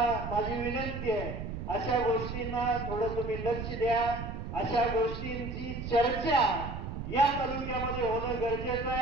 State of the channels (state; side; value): noise; right; rumble, 6 dB below the sound